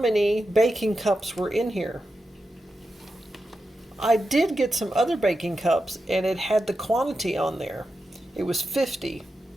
baking cups were in here. I did get some other baking cups and it had the quantity on there. It was 50.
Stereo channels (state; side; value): normal; both; correlation 0.89